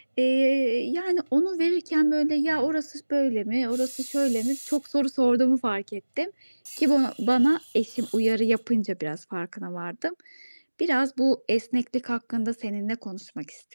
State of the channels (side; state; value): both; inverted; correlation -1.00